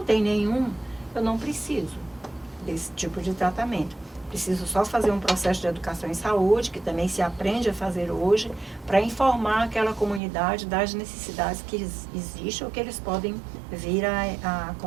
tem nenhum, eu não preciso desse tipo de tratamento. Preciso só fazer um processo de educação em saúde, que também se aprende a fazer hoje, para informar aquela comunidade das necessidades que existem ou que eles podem vir a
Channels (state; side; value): drops out; left; at 10.2 s